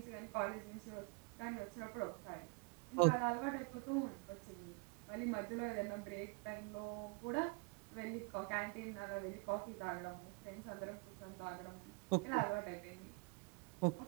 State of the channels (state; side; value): quieter; left; 33.3 dB